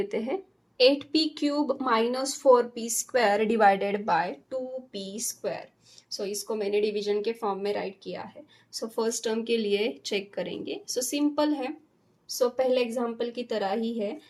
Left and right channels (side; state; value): both; identical; correlation 1.00